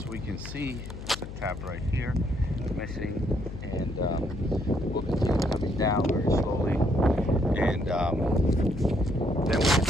we can see, there's a tab right here missing, and we'll continue coming down very slowly, and then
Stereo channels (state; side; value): noise; left; hum, 10 dB below the sound